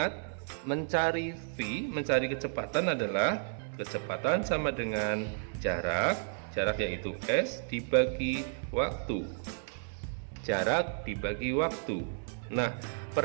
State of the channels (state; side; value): silent; left; 56 dB below the other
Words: mencari V, mencari kecepatan adalah kecepatan sama dengan jarak yaitu S dibagi waktu. Jarak dibagi waktu. Nah,